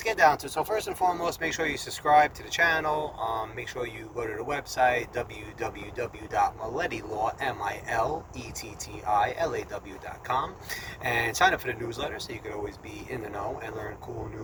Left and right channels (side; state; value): both; identical; correlation 1.00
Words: get down to it. So first and foremost, make sure you subscribe to the channel. Make sure you go to the website, www.milletti.com, and sign up for the newsletter so you can always be in the know and learn cool,